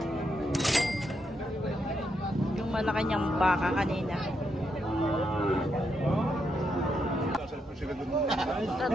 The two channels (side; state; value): both; normal; correlation 0.80